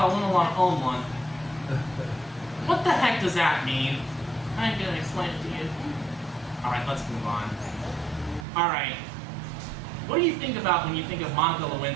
wouldn't want to own one. What the heck does that mean? I ain't gonna explain it to you. Alright, let's move on. Alright. What do you think about when you think of Monica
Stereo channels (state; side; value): drops out; left; at 8.5 s